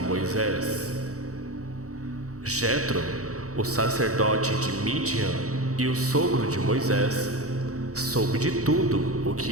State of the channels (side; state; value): left; late; 0.65 ms